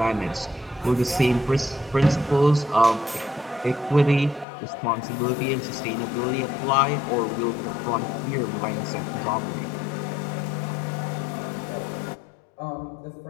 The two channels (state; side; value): drops out; right; at 4.5 s